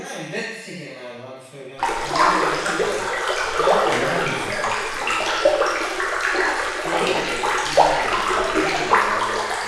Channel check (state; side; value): identical; both; correlation 1.00